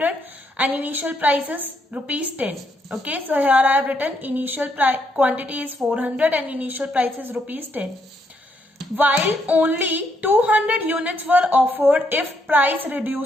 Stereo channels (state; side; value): normal; both; correlation 0.75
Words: and initial price is rupees 10. Okay, so here I have written initial quantity is 400 and initial price is rupees 10. While only 200 units were offered if price